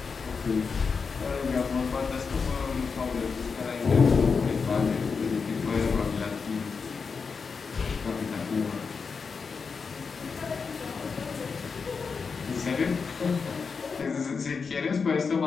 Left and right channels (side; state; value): right; quieter; 5.3 dB